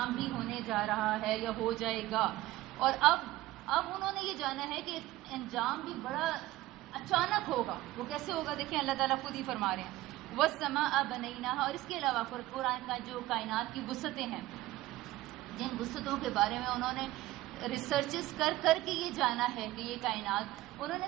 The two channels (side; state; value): left; quieter; 16.8 dB